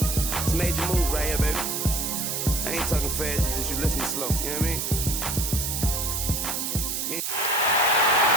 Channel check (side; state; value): right; noise; hiss, 2 dB below the sound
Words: It's a major move right here, baby. I ain't talking fast, it's just you listening slow. You know what I mean?